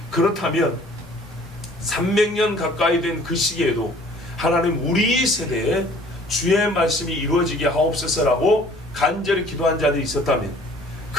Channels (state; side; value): normal; both; correlation 0.53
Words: 그렇다면 300년 가까이 된 그 시기에도 하나님 우리 세대에 주의 말씀이 이루어지게 하옵소서라고 간절히 기도한 자들이 있었다면,